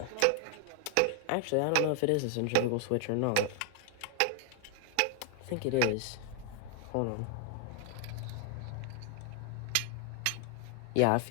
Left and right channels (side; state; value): both; different; correlation 0.00